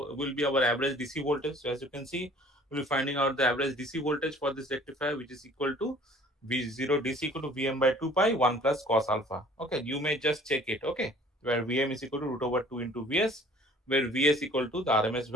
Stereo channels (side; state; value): both; normal; correlation 0.52